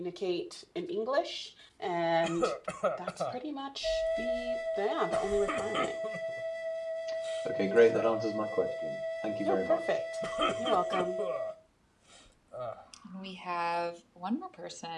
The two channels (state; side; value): identical; both; correlation 1.00